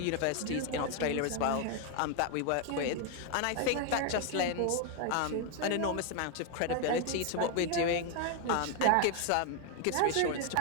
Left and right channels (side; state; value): both; different; correlation 0.01